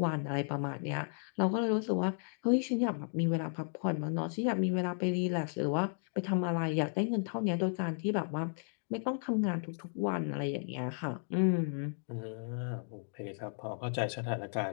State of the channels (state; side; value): silent; right; 55 dB below the other